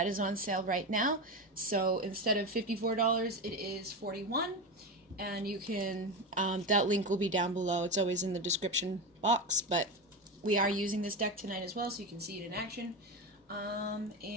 is on sale right now. So instead of $54, it is $41. And you can, that link will be down below. It's always in the description box, but we are using this deck tonight as well, so you can see it in action.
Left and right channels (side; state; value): both; normal; correlation 0.19